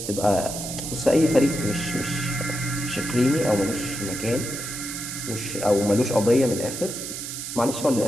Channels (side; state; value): right; noise; hiss, 7 dB below the sound